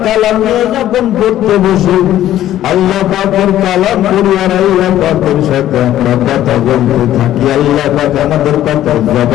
কালাম নিয়ে যখন পড়তে বসি, আল্লাহ পাকের কালাম পড়ি আর আল্লাহ পাকের সাথে আমরা কথা বলতে থাকি, আল্লাহ পাক আমাদের কথা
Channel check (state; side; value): quieter; right; 12.8 dB